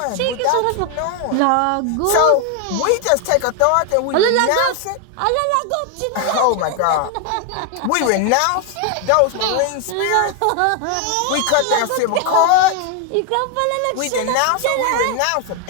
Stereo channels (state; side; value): different; both; correlation 0.01